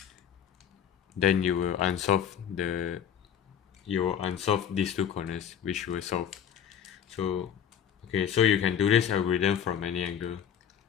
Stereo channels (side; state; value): right; quieter; 8.8 dB